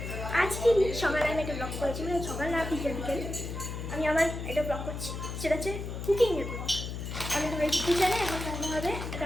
আজকে সকালে আমি একটা ব্লগ করেছি, মানে সকাল না বিকেল বিকেল আমি আমার একটা ব্লগ করছি, সেটা হচ্ছে কুকিংয়ের ব্লগ। আমি তো এই কিচেনে এখন রান্না হবে,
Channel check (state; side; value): noise; left; hum, 6 dB below the sound